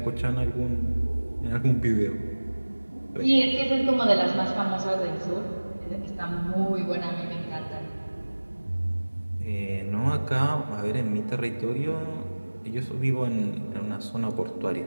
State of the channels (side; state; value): both; inverted; correlation -1.00